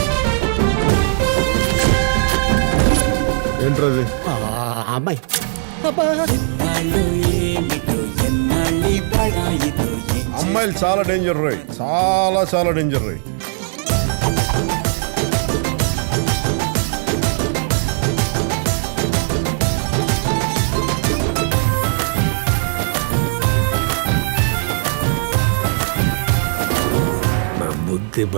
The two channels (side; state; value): left; silent; digital silence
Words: ఏంట్రది? అమ్మాయి అమ్మాయిలు చాలా డేంజర్ రోయ్, చాలా చాలా డేంజర్ రోయ్. నా బుద్ధి